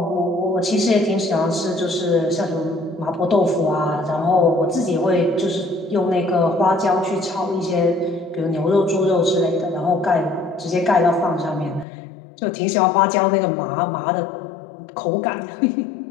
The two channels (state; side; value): drops out; right; at 11.9 s